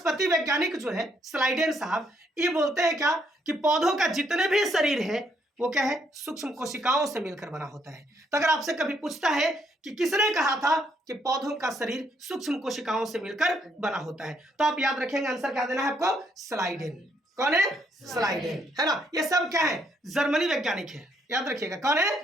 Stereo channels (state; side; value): normal; both; correlation 0.72